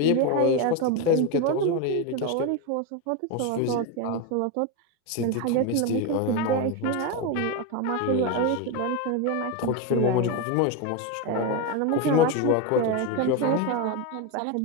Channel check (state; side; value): different; both; correlation 0.04